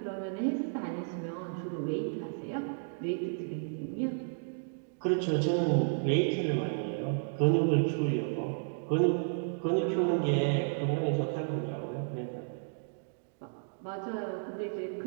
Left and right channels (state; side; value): silent; left; digital silence